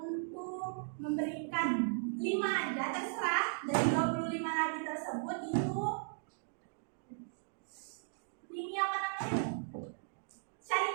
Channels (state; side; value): silent; left; digital silence